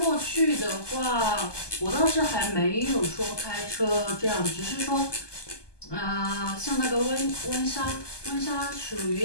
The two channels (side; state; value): right; late; 1.2 ms